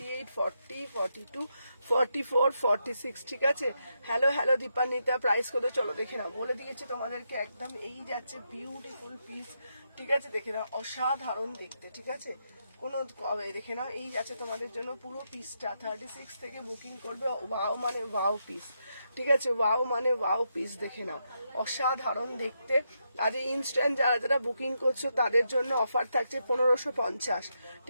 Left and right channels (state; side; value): inverted; both; correlation -0.82